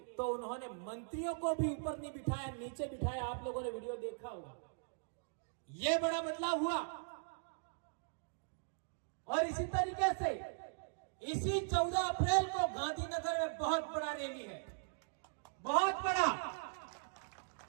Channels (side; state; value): left; silent; digital silence